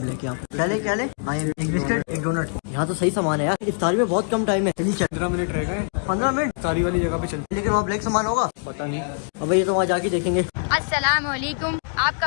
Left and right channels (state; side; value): silent; right; digital silence